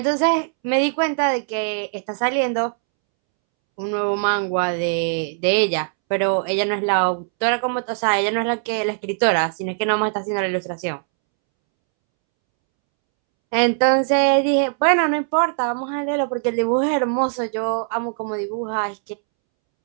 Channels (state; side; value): silent; left; 65 dB below the other